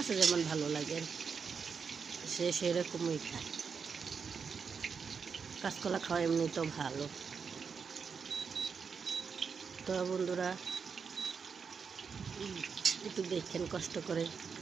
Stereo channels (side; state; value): left; quieter; 5.9 dB